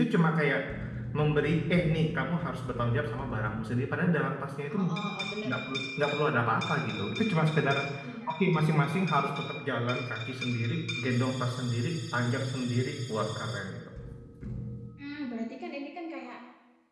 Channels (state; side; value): identical; both; correlation 1.00